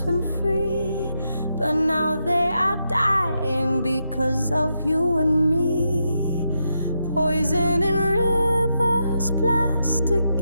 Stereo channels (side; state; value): both; inverted; correlation -0.84